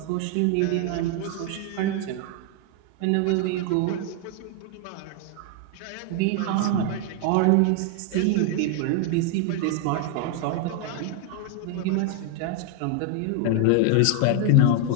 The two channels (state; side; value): different; both; correlation 0.00